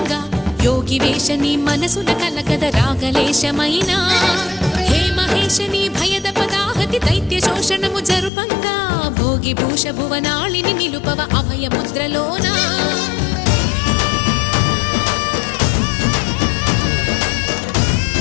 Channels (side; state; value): right; drops out; at 8.3 s